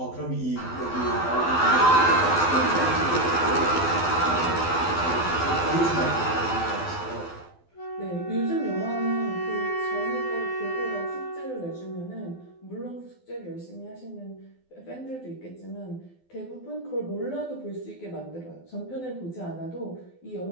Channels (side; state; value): right; late; 12 ms